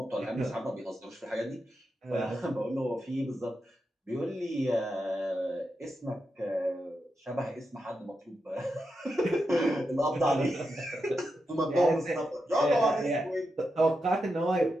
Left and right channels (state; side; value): normal; both; correlation 0.87